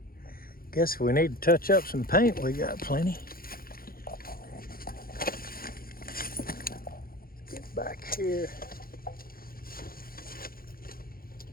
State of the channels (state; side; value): late; right; 0.42 ms